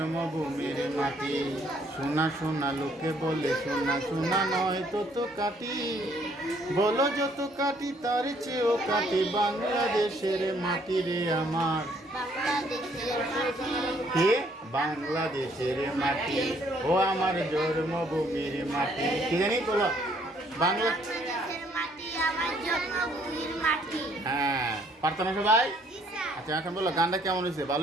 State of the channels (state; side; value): normal; both; correlation 0.65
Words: মাটি। শোনা শোনা লোকে বলে শোনা শোনা নয় তো কাটি, বলো যত কাটি তার চেয়েও কাটি বাংলাদেশের মাটি রে আমার কে বাংলাদেশের মাটি, ও আমার জন্মভূমির মাটি। কি জানি বলো বাংলা, হ্যাঁ পারতো না সবাই? আচ্ছা, এখন বলো গানটা কেমন হয়েছে?